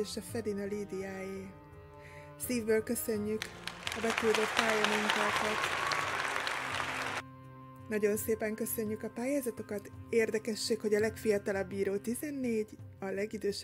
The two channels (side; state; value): both; identical; correlation 1.00